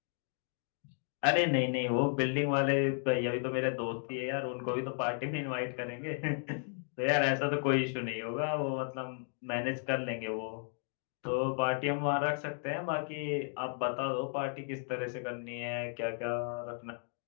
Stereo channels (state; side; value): silent; right; 55 dB below the other